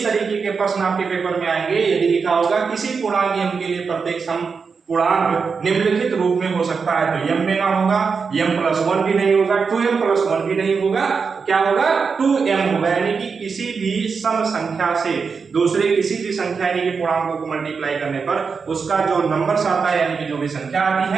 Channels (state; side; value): quieter; left; 5.4 dB